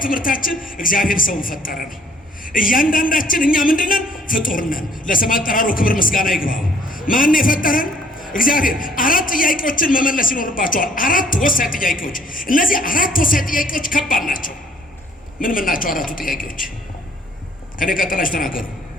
ትምህርታችን እግዚአብሔር ሰውን ፈጠረ ነው። እያንዳንዳችን እኛ ምንድነን? ፍጡር ነን። ለስም አጠራሩ ክብር ምስጋና ይግባው። ማን የፈጠረን? እግዚአብሔር። 4 ጥያቄዎችን መመለስ ይኖርባቸዋል። 4 ወሳኝ ጥያቄዎች። እነዚህ 4 ወሳኝ ጥያቄዎች ከባድ ናቸው። ምን ናቸው 4ቱ ጥያቄዎች? ከኔ ቀጥላችሁ ተናገሩ።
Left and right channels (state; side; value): normal; both; correlation 0.61